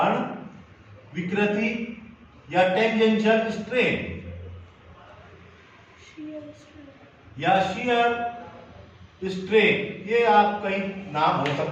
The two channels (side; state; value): both; identical; correlation 1.00